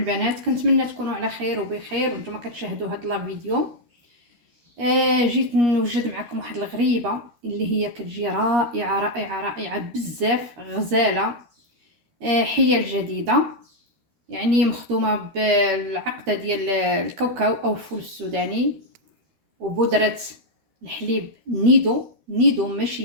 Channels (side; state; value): left; late; 13 ms